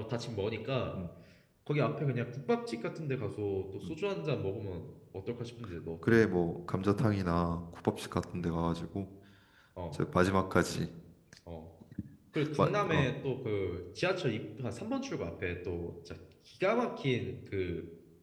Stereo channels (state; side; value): identical; both; correlation 1.00